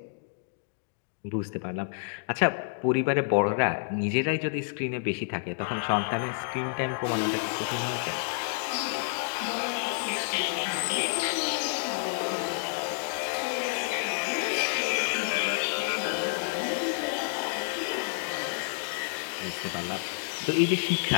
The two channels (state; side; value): silent; right; digital silence